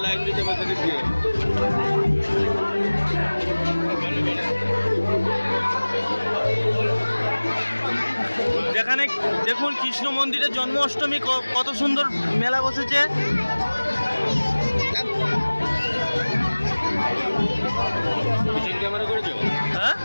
লাইন দিতে পারছে দিয়ে। যেখানে দেখুন কৃষ্ণ মন্দিরের জন্মাষ্টমী কত সুন্দর মেলা বসেছে। ক্যামেরা করেছো? হ্যাঁ,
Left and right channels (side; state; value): both; inverted; correlation -1.00